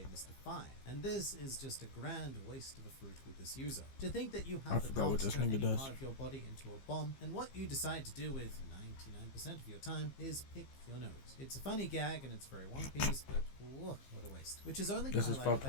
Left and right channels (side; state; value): right; late; 15 ms